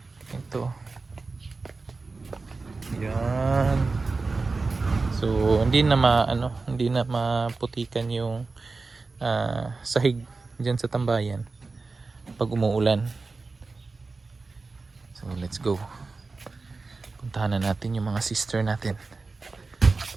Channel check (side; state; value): left; quieter; 3.9 dB